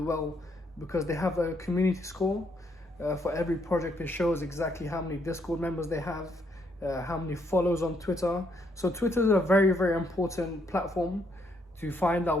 well, because they have a community score. For every project, it shows exactly how many Discord members they have, how many follows on Twitter. So Twitter is a very, very important platform to find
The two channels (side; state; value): both; normal; correlation 0.73